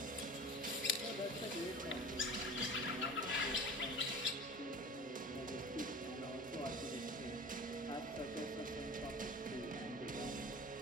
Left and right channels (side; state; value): both; normal; correlation 0.37